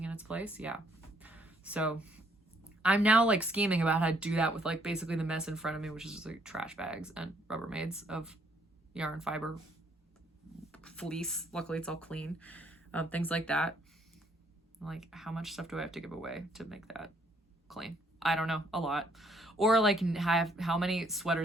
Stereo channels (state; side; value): normal; both; correlation 0.67